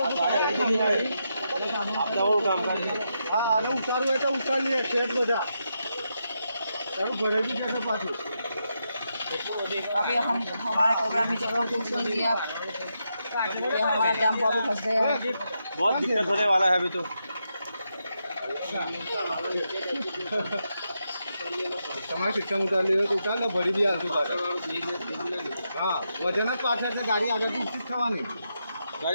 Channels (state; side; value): inverted; both; correlation -0.84